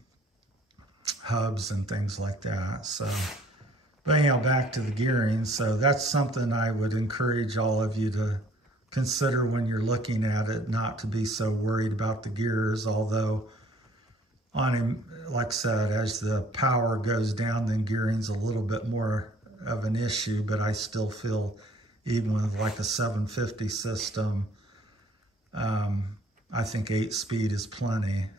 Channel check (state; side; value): normal; both; correlation 0.57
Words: hubs and things like that. So, but anyhow, back to the gearing. So that's something I would encourage all of you to consider when you're looking at it, not to be so worried about the gears. Although on him, like I said, as the power goes down, then gearing's a little bit more of an issue, but I still feel even with like a 750 system, I think 8-speed is plenty,